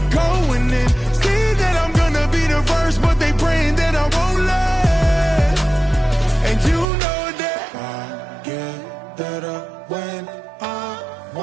going in. See that I'm gonna be the first, but they praying that I won't let. And you know that I get better when I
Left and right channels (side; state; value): left; drops out; at 6.9 s